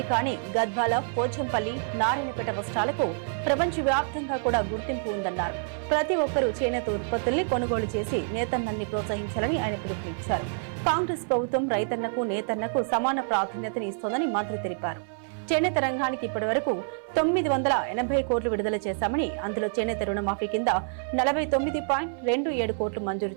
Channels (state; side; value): silent; left; 60 dB below the other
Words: అని గద్వాల, పోచంపల్లి, నారాయణపేట వస్త్రాలకు ప్రపంచవ్యాప్తంగా కూడా గుర్తింపు ఉందన్నారు. ప్రతి ఒక్కరూ చేనేత ఉత్పత్తుల్ని కొనుగోలు చేసి నేతన్నల్ని ప్రోత్సహించాలని ఆయన పిలుపునిచ్చారు. కాంగ్రెస్ ప్రభుత్వం రైతన్నకు, నేతన్నకు సమాన ప్రాధాన్యతని ఇస్తోందని మంత్రి తెలిపారు. చేనేత రంగానికి ఇప్పటి వరకు 980 కోట్లు విడుదల చేశామని, అందులో చేనేత రుణమాఫీ కింద 49.27 కోట్లు మంజూరు